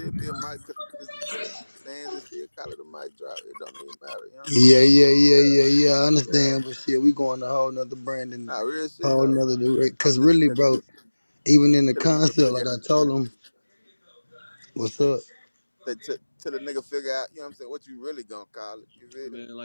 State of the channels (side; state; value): both; inverted; correlation -1.00